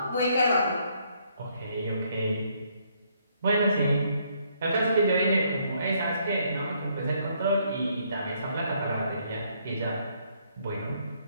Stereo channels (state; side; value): inverted; both; correlation -0.70